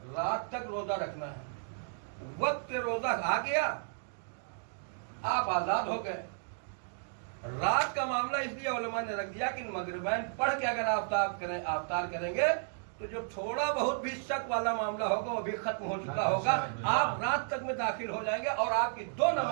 रात तक रोजा रखना है। वक्त रोजा आ गया, आप आजाद हो गए। रात का मामला इसलिए उलमा ने रख दिया कि मगरिबैन पढ़ के अगर अफ्तार करेंगे तो जो थोड़ा बहुत भी शक वाला मामला होगा वो भी खत्म हो चुका होगा। आप रात तक में दाखिल हो जाएंगे और आपकी 2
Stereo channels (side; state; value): left; silent; digital silence